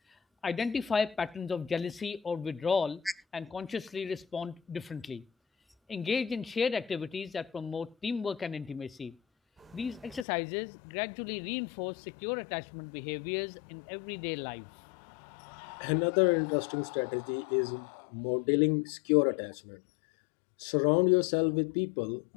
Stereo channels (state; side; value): drops out; right; at 10.2 s